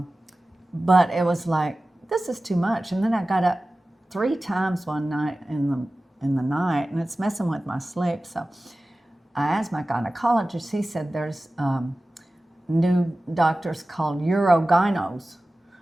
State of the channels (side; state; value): both; normal; correlation 0.96